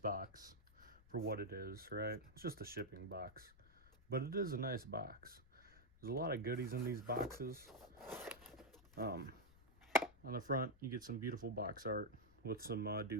for what it is, right? It's just a shipping box, but it is a nice box. There's a lot of goodies in these boxes. On the front, you get some beautiful box art with some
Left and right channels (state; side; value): noise; left; rumble, 24 dB below the sound